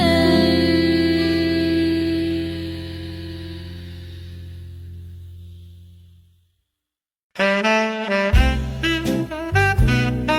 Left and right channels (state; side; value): identical; both; correlation 1.00